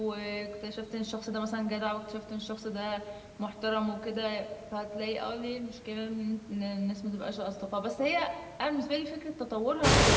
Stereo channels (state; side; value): identical; both; correlation 1.00